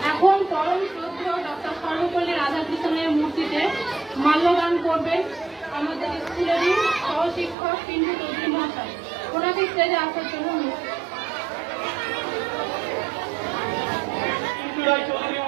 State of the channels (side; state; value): left; drops out; at 7.6 s